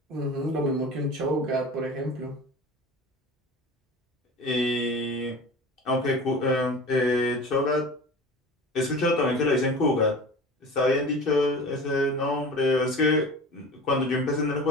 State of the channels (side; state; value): both; normal; correlation 0.36